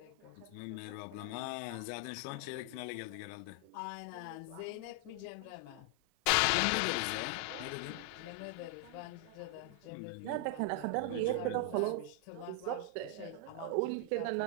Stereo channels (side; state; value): both; different; correlation 0.00